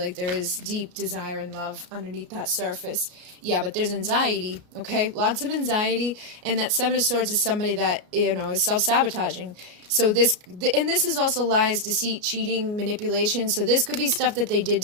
there is deep desire and love underneath that surface. Yeah, but there's anxiety, okay? Lots of anxiety. And that Seven of Swords is somebody that, you know, is self-sabotaging. So this is also lies, deceit, cheating, manipulation. So this could be stuff that they did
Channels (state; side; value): late; left; 33 ms